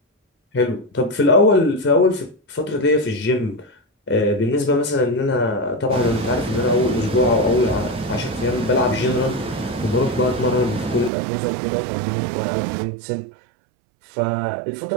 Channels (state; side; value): drops out; left; at 11.1 s